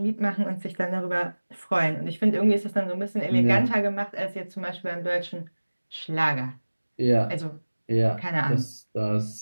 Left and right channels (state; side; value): inverted; both; correlation -1.00